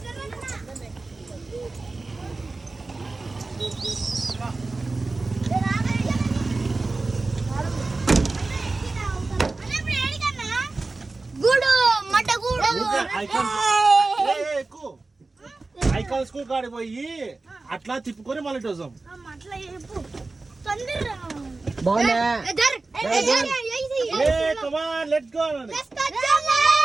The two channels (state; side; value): quieter; left; 3.5 dB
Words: ఐకాన్ స్కూల్ కాడికి పోయి అట్లా తిప్పుకొని మళ్ళీ వస్తాం.